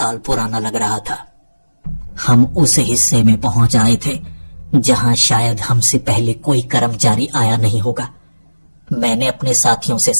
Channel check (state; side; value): inverted; both; correlation -1.00